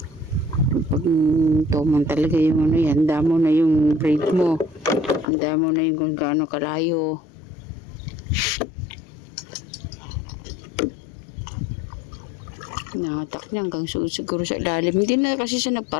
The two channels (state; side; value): drops out; right; at 5.2 s